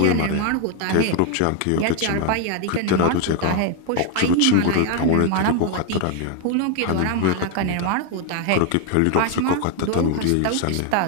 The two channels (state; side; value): different; both; correlation 0.01